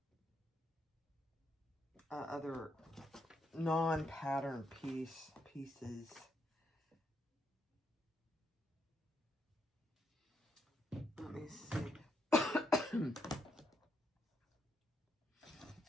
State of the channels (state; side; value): normal; both; correlation 0.78